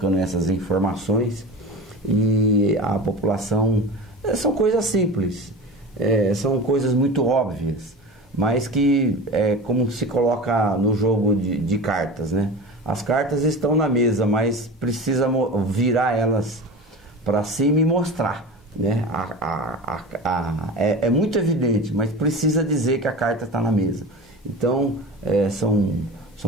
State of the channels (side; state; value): both; normal; correlation 0.32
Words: essas informações e a população... São coisas simples, são coisas muito óbvias, mas que como se coloca no jogo de cartas, né? As cartas estão na mesa, mas precisa virar elas para cima e mostrar, né? É muito evidente, mas precisa dizer que a carta está na mesa. Então,